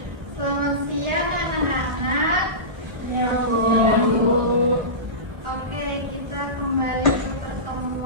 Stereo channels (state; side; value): late; left; 1.1 ms